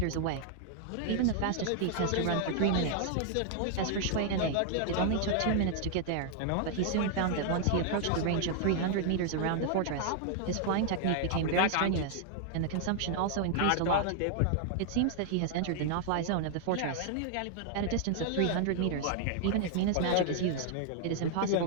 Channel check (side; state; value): both; different; correlation -0.01